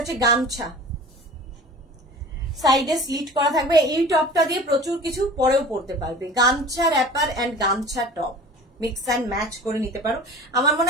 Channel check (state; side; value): normal; both; correlation 0.41